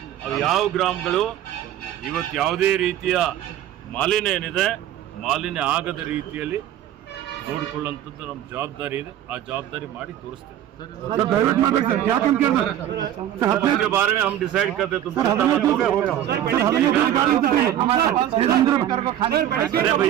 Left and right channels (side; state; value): left; quieter; 11.5 dB